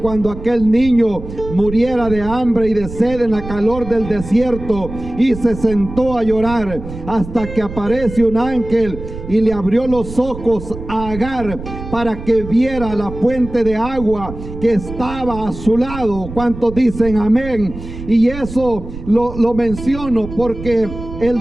aquel niño muriera de hambre y de sed en la calor del desierto, y se sentó a llorar hasta que aparece un ángel y le abrió los ojos a Agar para que viera la fuente de agua que estaba a su lado. ¿Cuántos dicen amén? Y eso lo menciono porque el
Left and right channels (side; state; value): right; noise; rumble, 11 dB below the sound